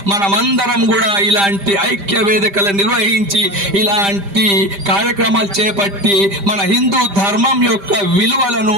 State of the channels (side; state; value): left; late; 5.0 ms